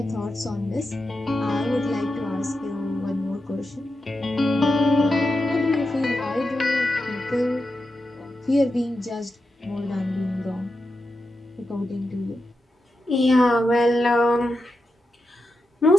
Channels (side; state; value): both; normal; correlation 0.89